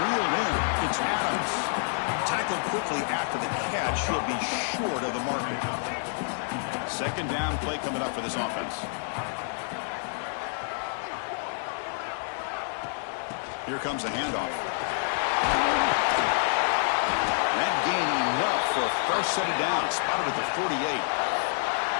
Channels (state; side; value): silent; right; digital silence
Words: in. It's Adams. Tackled quickly after the catch. He'll be short of the marker. Second down play coming up for this offense. Here comes the handoff. That gain enough for a fresh set of downs. Spotted at the 48.